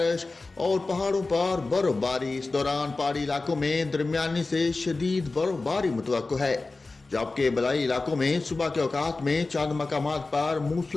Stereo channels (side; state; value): right; quieter; 3.5 dB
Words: और पहाड़ों पर बर्फबारी। इस दौरान पहाड़ी इलाकों में दरमियानी से शदीद बर्फबारी मुतवक्को है, जबकि बलाई इलाकों में सुबह के औकात में चंद मकामात पर